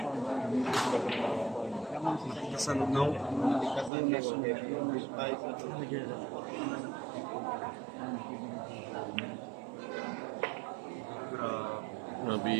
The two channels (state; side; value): drops out; left; at 3.9 s